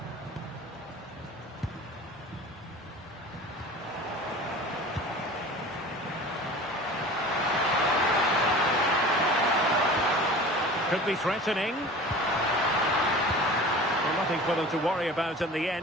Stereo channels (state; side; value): normal; both; correlation 0.39